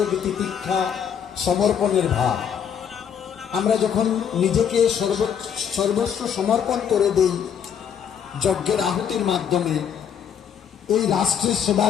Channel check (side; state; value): right; quieter; 8.1 dB